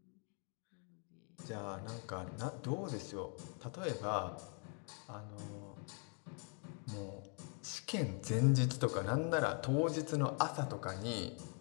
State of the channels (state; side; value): quieter; right; 39.8 dB